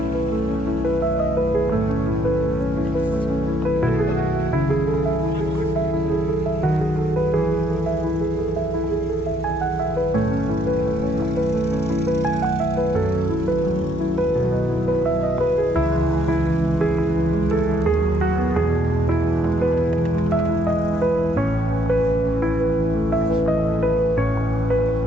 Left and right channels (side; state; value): left; noise; rumble, 20 dB below the sound